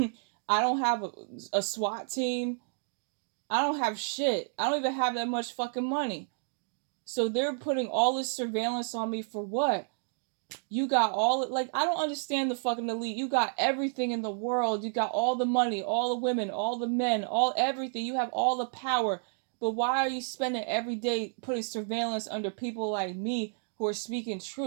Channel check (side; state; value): left; silent; digital silence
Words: don't have a SWAT team. I don't have shit. I don't even have that much fucking money. So they're putting all this surveillance on me for what? You got all, like, I don't understand the fucking elite. You got everything in the world. You got all the money, all the women, all the men, all everything. You have all the power. But why are you spending every day putting surveillance under people like me who are speaking